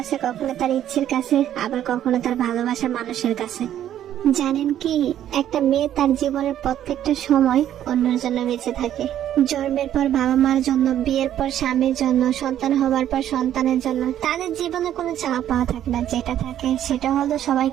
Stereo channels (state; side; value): quieter; left; 11.2 dB